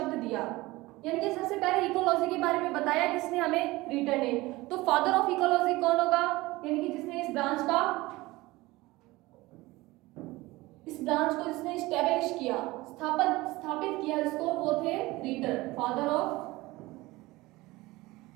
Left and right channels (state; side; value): quieter; left; 20.2 dB